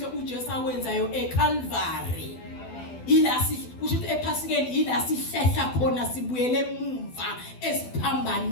uJesu awenzayo eCalvary. Kusho ukuthi ephasikeni ila sihlehla khona sibuyele emumva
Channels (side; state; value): right; late; 12 ms